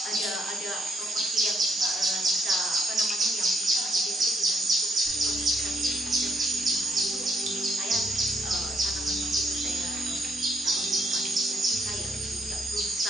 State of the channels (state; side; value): normal; both; correlation 0.73